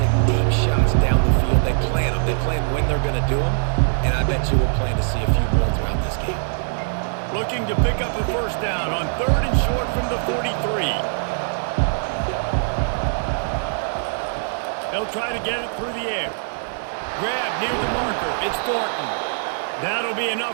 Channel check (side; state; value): left; silent; digital silence